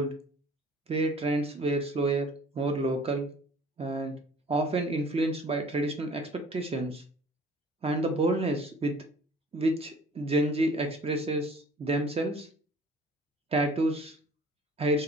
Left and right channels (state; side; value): normal; both; correlation 0.51